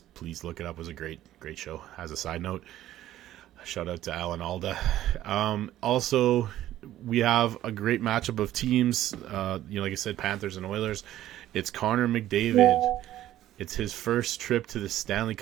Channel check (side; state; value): left; quieter; 13.4 dB